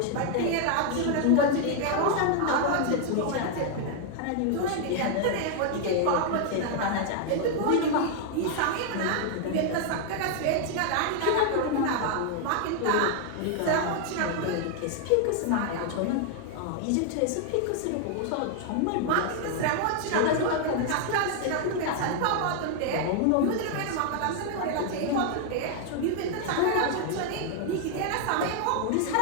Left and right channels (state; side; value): different; both; correlation 0.00